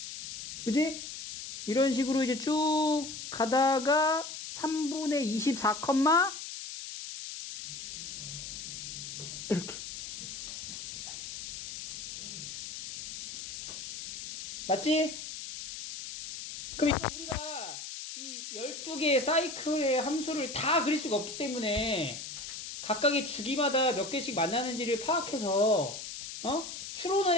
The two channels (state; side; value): noise; left; hiss, 9 dB below the sound